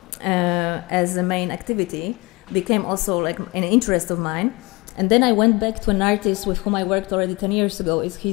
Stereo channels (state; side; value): quieter; right; 24.7 dB